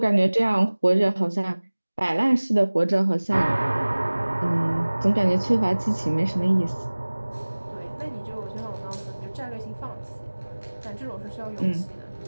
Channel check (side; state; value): both; inverted; correlation -1.00